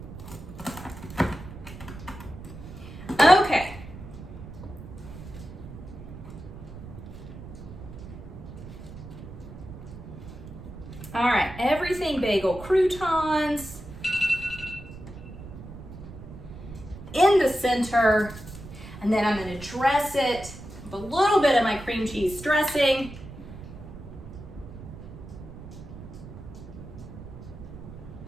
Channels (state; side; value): noise; right; rumble, 13 dB below the sound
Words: Okay. All right, everything bagel croutons in the center, and then I'm going to dress it with a little bit of my cream cheese dressing.